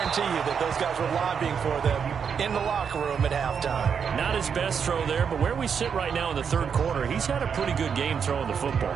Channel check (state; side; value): quieter; left; 6.9 dB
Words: you that those guys were lobbying for them in the locker room at halftime. Not his best throw there, but where we sit right now in the third quarter, he's had a pretty good game throwing the football.